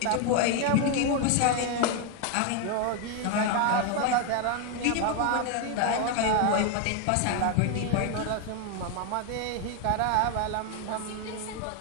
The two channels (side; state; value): both; different; correlation 0.01